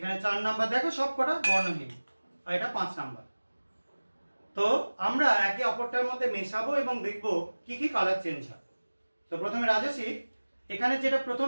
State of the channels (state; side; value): inverted; both; correlation -1.00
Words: 4 নাম্বার, দেখো সব কটা বর্ণহীন, আর এটা 5 নাম্বার। তো আমরা একে অপরটার মধ্যে মেশাবো এবং দেখবো কি কি কালার চেঞ্জ হয়। তো প্রথমে রাজস্বী, এখানে যেটা প্রথম